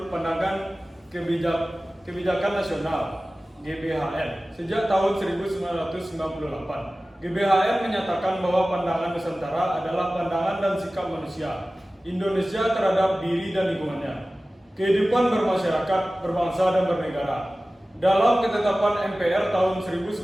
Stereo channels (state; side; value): normal; both; correlation 0.97